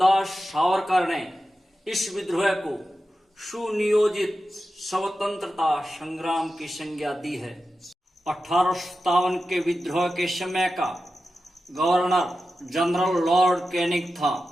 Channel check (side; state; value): both; normal; correlation 0.92